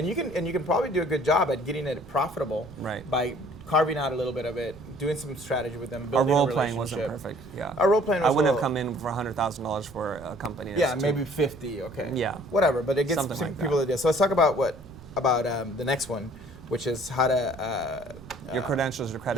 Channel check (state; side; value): noise; right; rumble, 18 dB below the sound